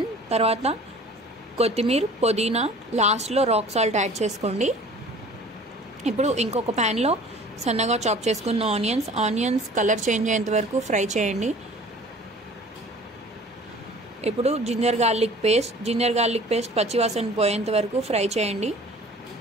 తర్వాత కొత్తిమీర, పుదీనా, లాస్ట్లో రాక్ సాల్ట్ యాడ్ చేసుకోండి. ఇప్పుడు ఇంకొక ప్యాన్లో సన్నగా చాప్ చేసుకున్న ఆనియన్స్ కలర్ చేంజ్ అయ్యేంత వరకు ఫ్రై చేయండి. ఇప్పుడు జింజర్ గార్లిక్ పేస్ట్ పచ్చివాసన పోయేంత వరకు ఫ్రై చేయండి.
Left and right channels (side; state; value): both; normal; correlation 0.47